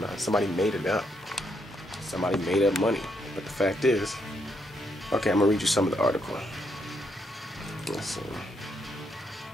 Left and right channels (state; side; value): normal; both; correlation 0.77